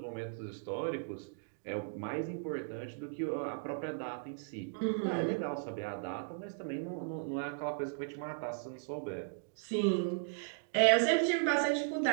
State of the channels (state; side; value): silent; left; digital silence